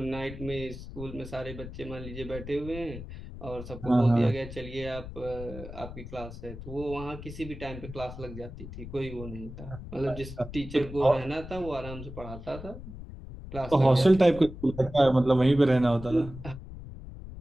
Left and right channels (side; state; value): left; noise; rumble, 12 dB below the sound